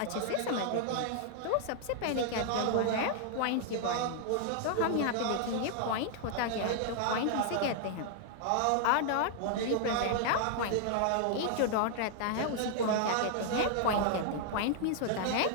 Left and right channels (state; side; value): different; both; correlation 0.00